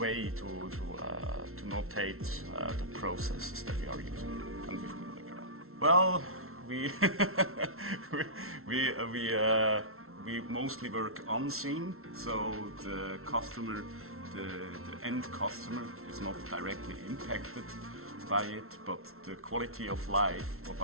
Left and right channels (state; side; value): late; left; 0.62 ms